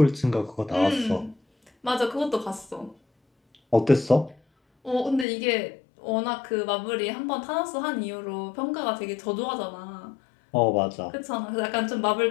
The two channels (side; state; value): right; drops out; at 5.2 s